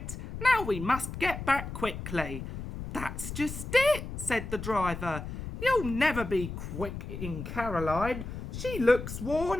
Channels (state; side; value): noise; left; rumble, 8 dB below the sound